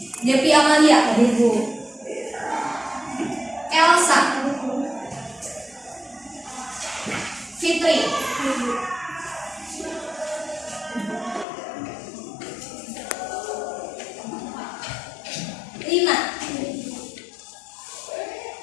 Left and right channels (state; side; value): drops out; right; at 11.5 s